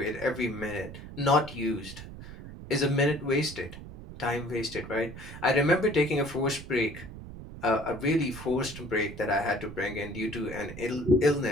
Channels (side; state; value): right; noise; rumble, 13 dB below the sound